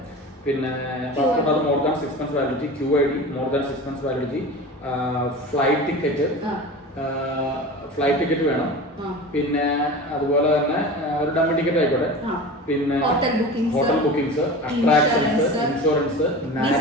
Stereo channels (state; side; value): normal; both; correlation 0.33